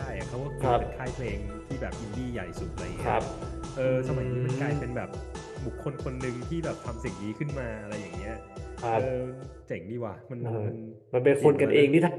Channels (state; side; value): identical; both; correlation 1.00